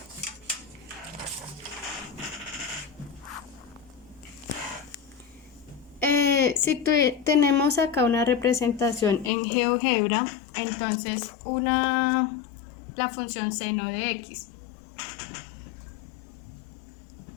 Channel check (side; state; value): right; drops out; at 9.3 s